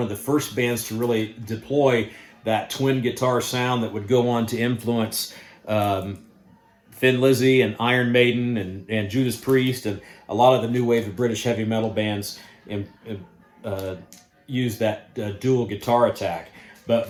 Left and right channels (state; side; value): identical; both; correlation 1.00